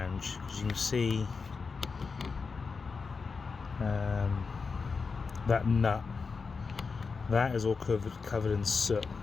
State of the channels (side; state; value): right; quieter; 4.9 dB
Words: because you can see that nut, that is all covered in soot,